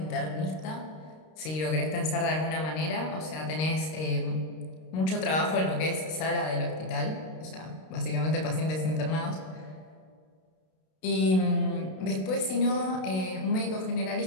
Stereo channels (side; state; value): right; late; 32 ms